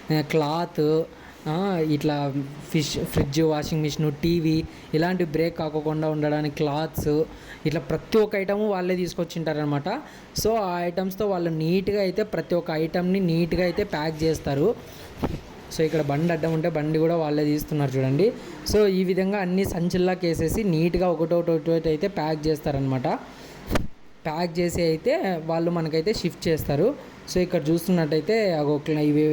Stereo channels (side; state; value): both; identical; correlation 1.00